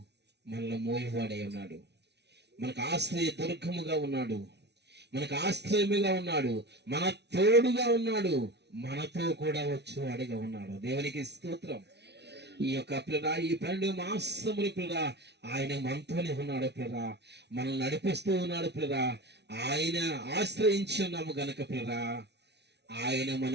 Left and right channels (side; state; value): left; late; 0.50 ms